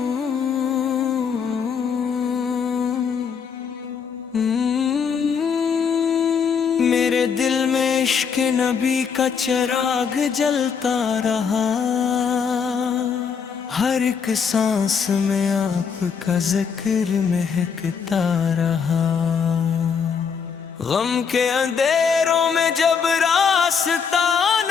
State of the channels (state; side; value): quieter; right; 6.5 dB